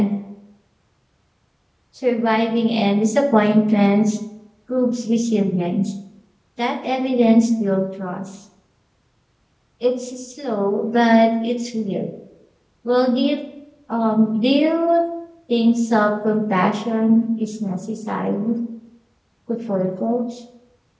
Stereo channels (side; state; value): both; identical; correlation 1.00